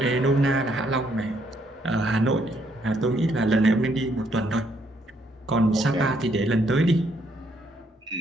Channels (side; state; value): both; normal; correlation 0.71